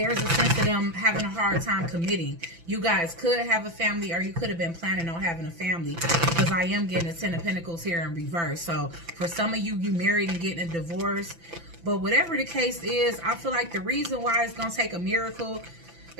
a sense of them having a hard time committing. You guys could have a family or you could have been planning on having a family because I am getting a Ten of Pentacles here in reverse. So, for some of you, you married and getting a divorce. But whatever the case is, I feel like the reason why it's going to take a miracle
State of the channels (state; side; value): late; left; 5.9 ms